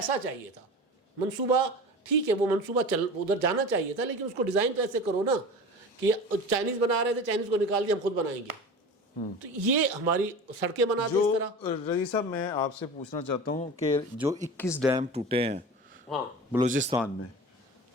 چاہیے تھا, منصوبہ ٹھیک ہے وہ منصوبہ ادھر جانا چاہیے تھا, لیکن اس کو ڈیزائن تو ایسے کرو نا کہ چائنیز بنا رہے تھے, چائنیز کو نکال دیا ہم خود بنائیں گے. تو یہ ہماری سڑکیں بناتے اس طرح. رضی صاحب میں آپ سے پوچھنا چاہتا ہوں کہ جو 21 ڈیم ٹوٹے ہیں بلوچستان میں,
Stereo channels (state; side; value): normal; both; correlation 0.34